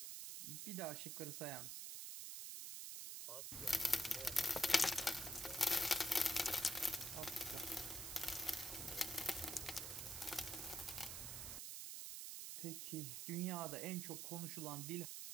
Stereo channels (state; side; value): noise; right; hiss, 5 dB below the sound